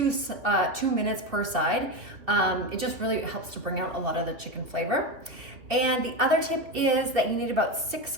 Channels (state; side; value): late; left; 2.9 ms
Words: minutes per side. It just really helps to bring out a lot of the chicken flavor. And the other tip is that you need about 6